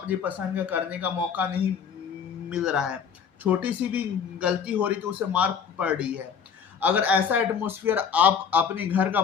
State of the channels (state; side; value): quieter; right; 7.0 dB